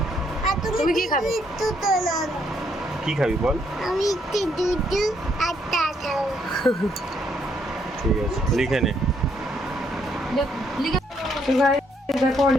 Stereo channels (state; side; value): normal; both; correlation 0.72